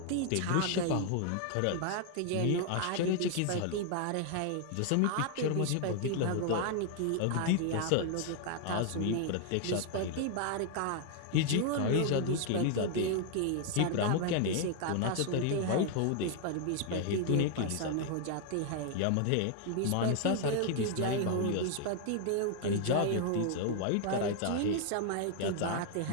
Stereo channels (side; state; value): both; different; correlation 0.00